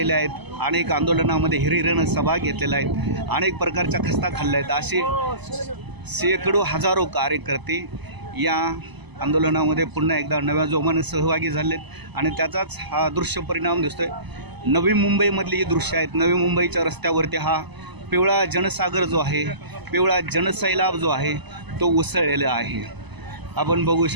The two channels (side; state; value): left; late; 1.0 ms